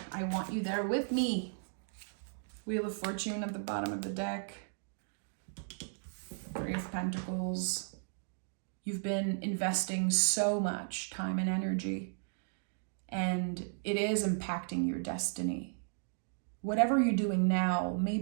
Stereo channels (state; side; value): silent; left; digital silence